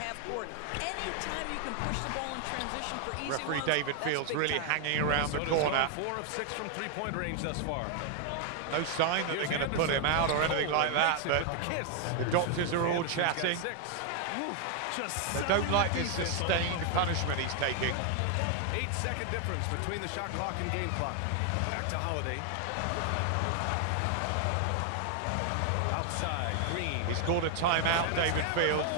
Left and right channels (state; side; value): different; both; correlation 0.00